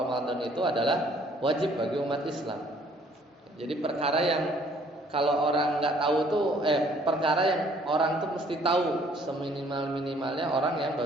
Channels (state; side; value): normal; both; correlation 0.60